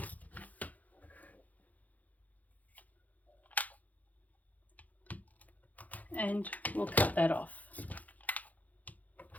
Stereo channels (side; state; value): right; late; 0.078 ms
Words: And we'll cut that off.